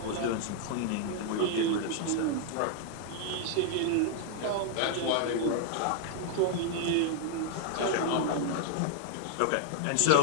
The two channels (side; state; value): both; different; correlation 0.00